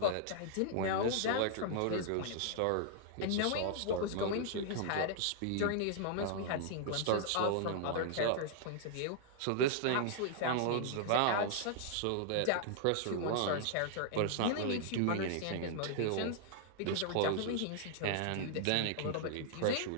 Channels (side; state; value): both; different; correlation -0.01